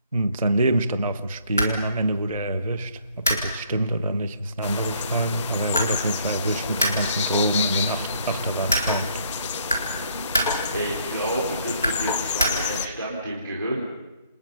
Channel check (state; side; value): inverted; both; correlation -0.64